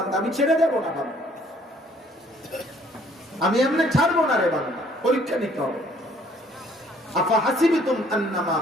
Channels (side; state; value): both; normal; correlation 0.60